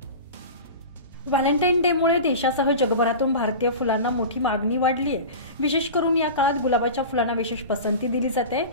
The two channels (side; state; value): both; inverted; correlation -0.31